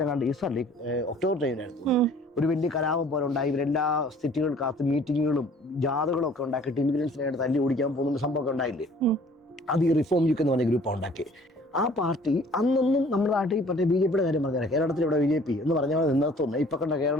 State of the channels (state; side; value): normal; both; correlation 0.53